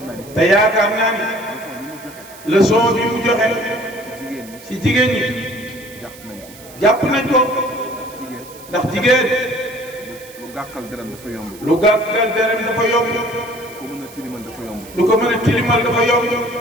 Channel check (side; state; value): right; noise; hiss, 20 dB below the sound